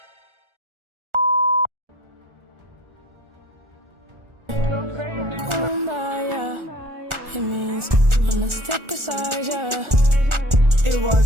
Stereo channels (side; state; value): left; late; 1.4 ms